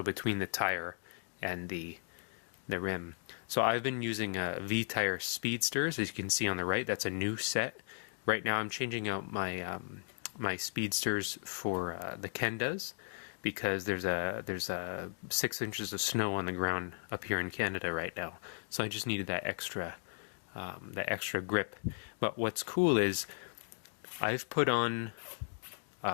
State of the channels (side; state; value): right; silent; digital silence